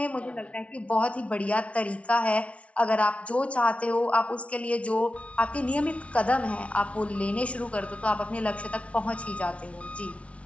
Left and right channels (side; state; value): right; late; 0.063 ms